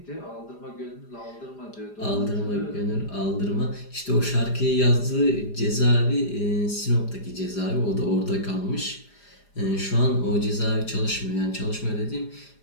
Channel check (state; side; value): late; right; 4.9 ms